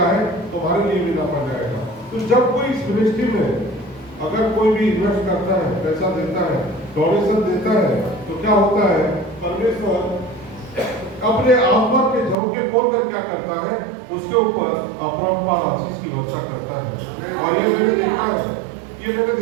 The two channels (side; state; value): left; drops out; at 12.4 s